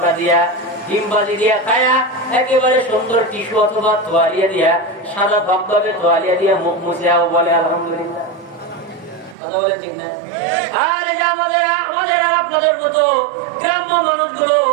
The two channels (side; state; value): left; drops out; at 9.3 s